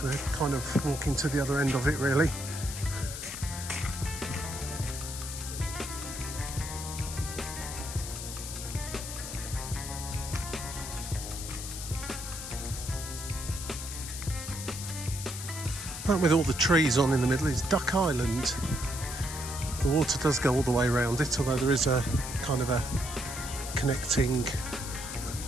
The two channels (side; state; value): left; noise; hiss, 8 dB below the sound